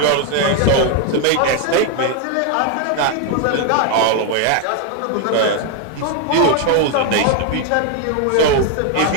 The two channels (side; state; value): both; different; correlation 0.01